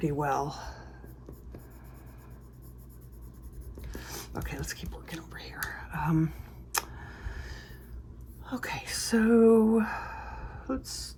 well. Okay, let's keep working over here. Okay, so let's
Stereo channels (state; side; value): identical; both; correlation 1.00